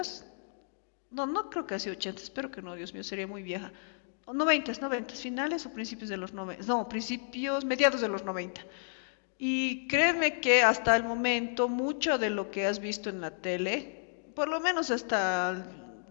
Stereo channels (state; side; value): silent; right; digital silence